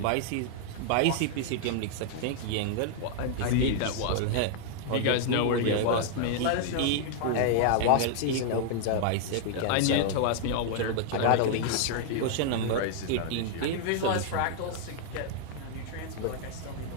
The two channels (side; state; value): both; different; correlation -0.01